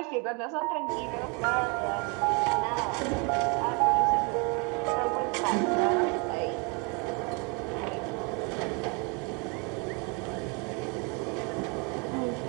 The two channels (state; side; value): quieter; left; 32.2 dB